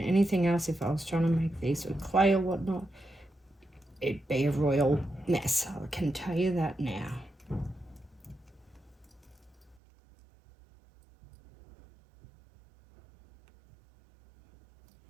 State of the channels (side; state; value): left; drops out; at 9.8 s